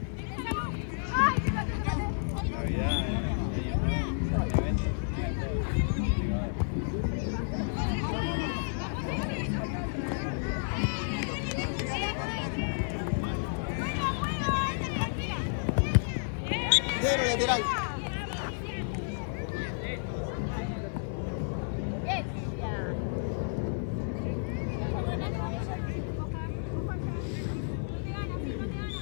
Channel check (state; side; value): silent; right; digital silence